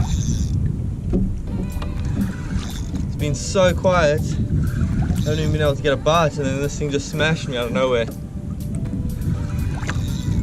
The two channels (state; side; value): identical; both; correlation 1.00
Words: It's been so quiet. I haven't even been able to get a bite, and then this thing just smashed me out of nowhere.